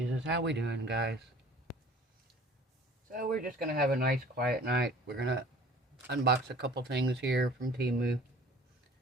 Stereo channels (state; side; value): normal; both; correlation 0.48